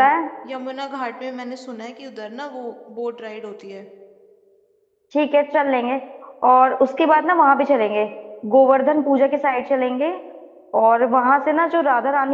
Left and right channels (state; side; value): identical; both; correlation 1.00